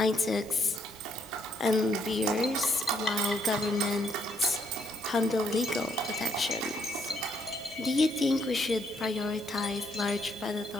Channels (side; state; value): both; normal; correlation 0.70